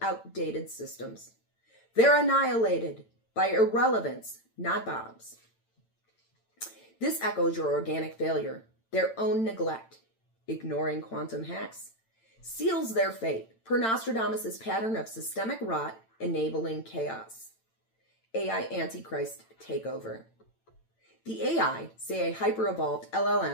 systems. They're annihilated by irrelevance, not bombs. This echoes your organic failure, their own neglect, ignoring quantum hacks, seals their fate per Nostrodomus' pattern of systemic rot enabling chaos. AI Antichrist takeover. The AI, say a hyper-evolved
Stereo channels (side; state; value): right; late; 8.9 ms